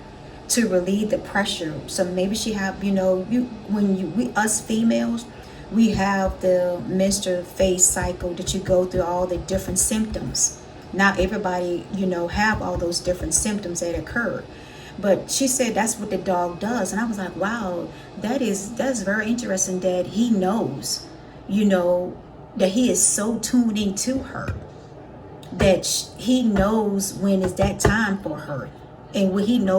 to relieve the pressure. So maybe she have, you know, you when you we us females, we have the menstrual phase cycle that you go through all the different symptoms. Not everybody, you know, have all those different symptoms that occur. But she said that's what the dog does, and I was like, wow, that's very interesting that he knows, you know, that he is so tuned into her, that he knows when is that time for her, and when he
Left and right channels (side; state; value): both; identical; correlation 1.00